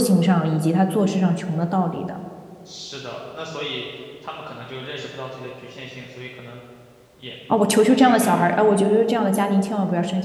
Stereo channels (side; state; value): both; identical; correlation 1.00